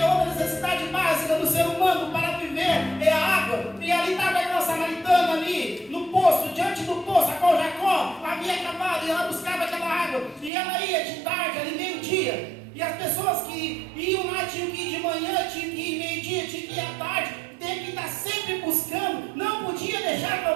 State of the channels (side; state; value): left; drops out; at 10.5 s